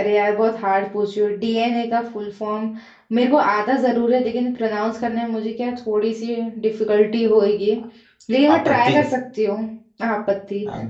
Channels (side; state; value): both; identical; correlation 1.00